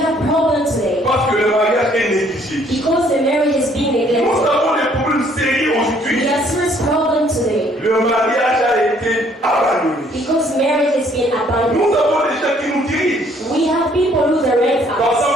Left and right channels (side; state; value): both; normal; correlation 0.63